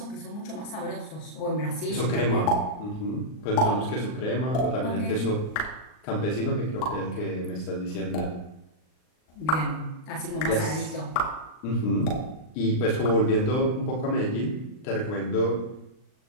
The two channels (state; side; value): late; right; 39 ms